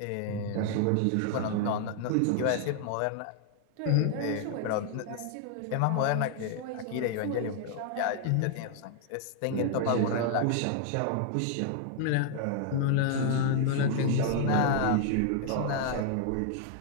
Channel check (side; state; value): both; different; correlation 0.00